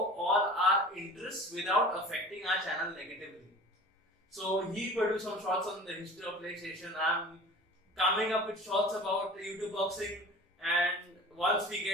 all our interests without affecting our channel negatively. So he produced some shorts on the history of PlayStation. I'm coming up with shorts about YouTube boxing, and once we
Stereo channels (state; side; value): normal; both; correlation 0.40